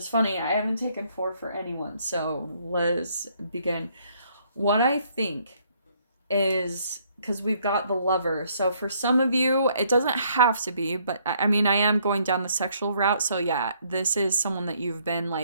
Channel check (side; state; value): both; inverted; correlation -0.67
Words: funny. I haven't taken 4 for anyone, so let's begin. What I think is, because we've got the Lover, so for some of you, it doesn't have to be, but I mean, I am going down the sexual route, so yeah, this is someone that you've been